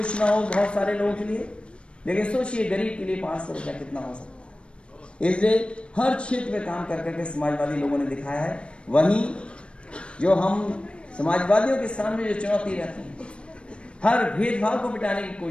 ना हो बहुत सारे लोगों के लिए, लेकिन सोचिए गरीब के लिए 500 रुपया कितना हो सकता है। इसलिए हर क्षेत्र में काम कर करके समाजवादी लोगों ने दिखाया है। वहीं जो हम समाजवादियों के सामने जो चुनौती रहती है, हर भेदभाव को मिटाने की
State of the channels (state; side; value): late; right; 0.058 ms